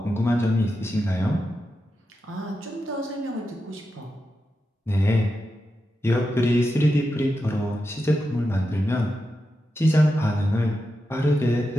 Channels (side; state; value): both; normal; correlation 0.89